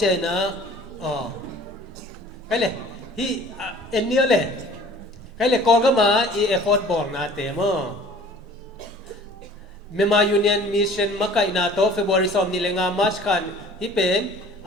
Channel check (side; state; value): both; normal; correlation 0.49